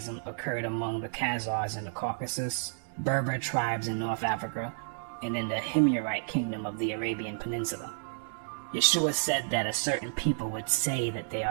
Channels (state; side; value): silent; left; digital silence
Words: occurred among the Khazars in the Caucasus, Berber tribes in North Africa, and in the Himyarite kingdom of the Arabian Peninsula. Yeshua said that a certain people would say that they